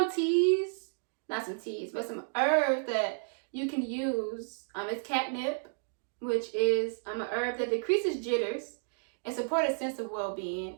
teas, not some teas, but some herbs that you can use. It's catnip, which is an herb that decreases jitters and supports a sense of well-being,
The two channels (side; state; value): left; silent; digital silence